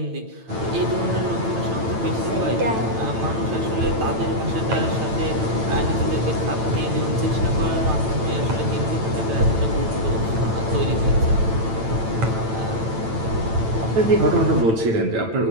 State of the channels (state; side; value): late; left; 9.0 ms